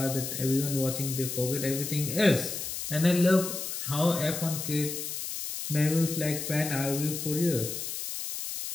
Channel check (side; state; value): left; noise; hiss, 5 dB below the sound